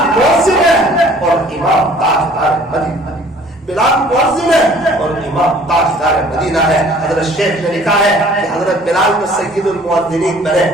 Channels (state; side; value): normal; both; correlation 0.53